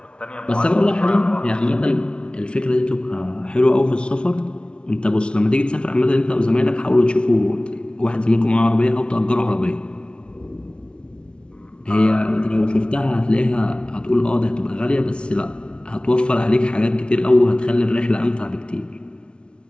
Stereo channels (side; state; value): right; late; 0.057 ms